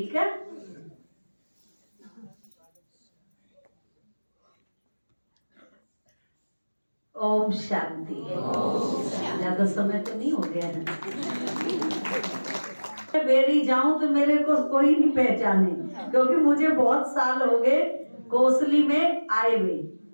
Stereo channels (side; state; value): both; inverted; correlation -1.00